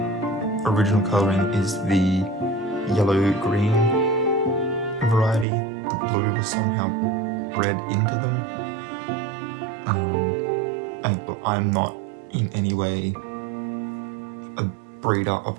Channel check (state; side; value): drops out; left; at 5.5 s